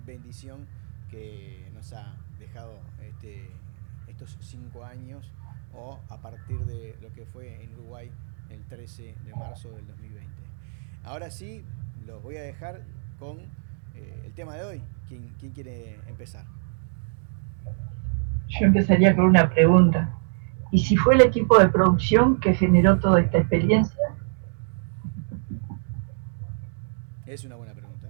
bendición que nos ha dejado estos 5 años, o a partir de lo que fue en Uruguay el 13 de marzo del 2020. Ahora sí, los voy a dejar con el tema de hoy. ¿Quién quiere empezar? Yo empezaría con una pregunta. ¿Y si fue el equipo de producción que generó toda esta experiencia? Es una buena pregunta.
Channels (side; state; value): left; silent; digital silence